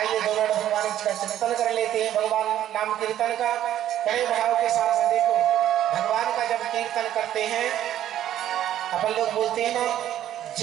दो मिनट भगवान का चिंतन कर लेते हैं, भगवान नाम कीर्तन का बड़े भाव के साथ में। देखो भगवान का जब कीर्तन करते हैं अपन लोग बोलते हैं ना,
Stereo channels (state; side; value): quieter; left; 11.8 dB